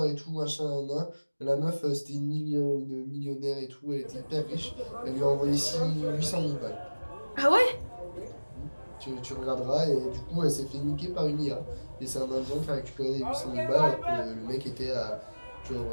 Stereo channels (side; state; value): both; inverted; correlation -1.00